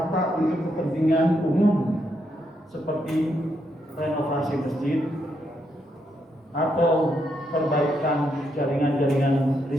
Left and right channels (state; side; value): normal; both; correlation 0.79